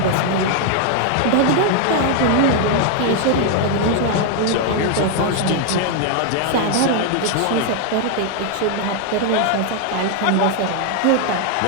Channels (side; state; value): both; different; correlation 0.00